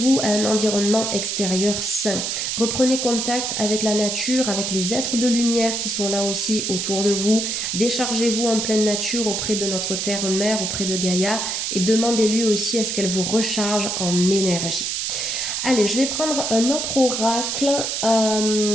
à un environnement extérieur sain. Reprenez contact avec la nature, avec les êtres de lumière qui sont là aussi autour de vous. Déchargez-vous en pleine nature auprès de notre terre-mère, auprès de Gaïa, et demandez-lui aussi à ce qu'elle vous recharge en énergie. Allez, je vais prendre un autre oracle.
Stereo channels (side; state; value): right; noise; hiss, 1 dB below the sound